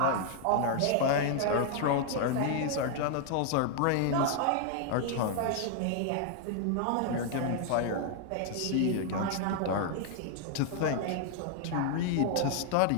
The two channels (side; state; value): both; different; correlation 0.00